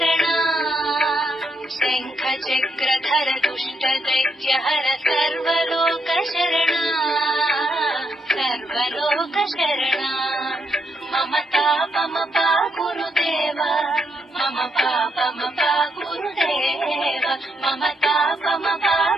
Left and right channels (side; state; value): both; normal; correlation 0.78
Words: शङ्खचक्रधर दुष्ट दैत्यहर सर्वलोकशरणा सर्वलोकशरणा मम तापमपा गुरुदेव मम पापमपा गुरुदेव मम तापमपा